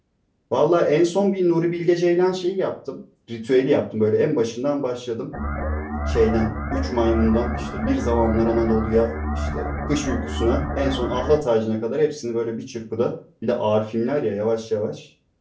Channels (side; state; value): both; identical; correlation 1.00